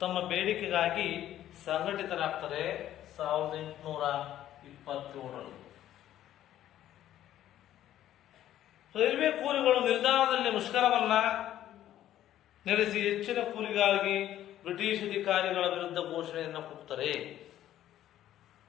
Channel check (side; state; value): right; quieter; 12.3 dB